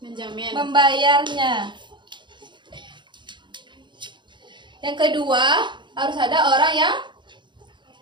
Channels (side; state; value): left; late; 0.23 ms